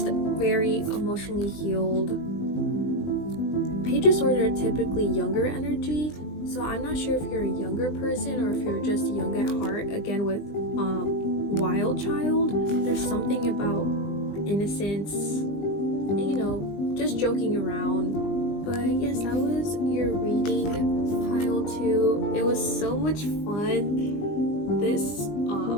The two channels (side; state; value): right; late; 20 ms